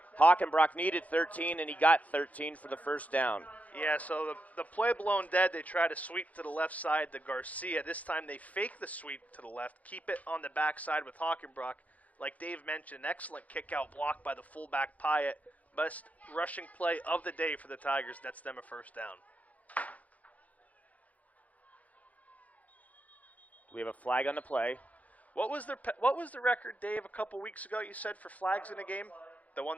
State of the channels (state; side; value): late; right; 0.072 ms